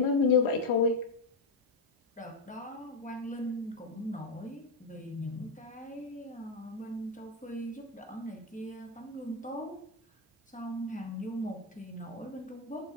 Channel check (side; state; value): right; quieter; 3.4 dB